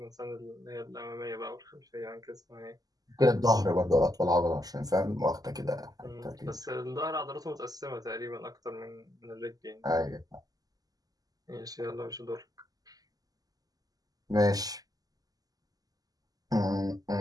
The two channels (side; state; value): left; late; 0.18 ms